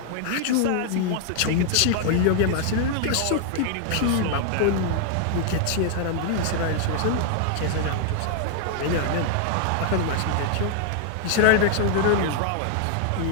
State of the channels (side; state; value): both; different; correlation 0.00